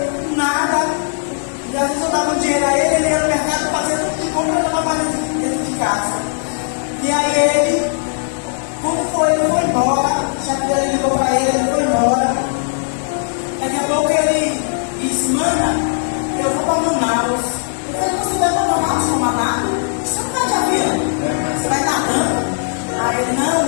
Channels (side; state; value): right; silent; digital silence